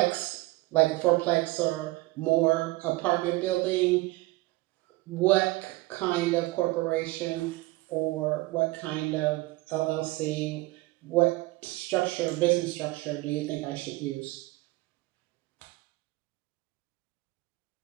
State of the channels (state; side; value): quieter; left; 20.8 dB